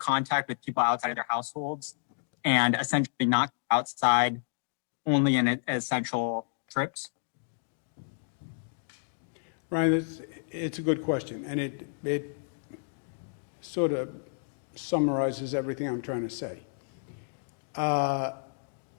with people outside of their households and essentially not outside, only in essential trips? Ryan, it's a good question, and it sort of summarizes everything I'm trying to say.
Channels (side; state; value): right; silent; digital silence